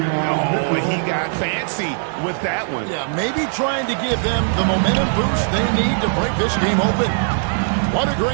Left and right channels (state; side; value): silent; left; 66 dB below the other